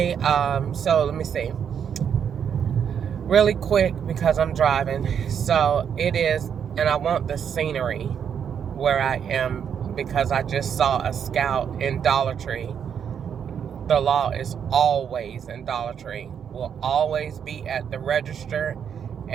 so let me see really quick because I'm driving. So it is, and I want the scenery where I am because I just saw a Scout in Dollar Tree. The law is always in Dollar Tree, will always be at the register,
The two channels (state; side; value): quieter; left; 7.9 dB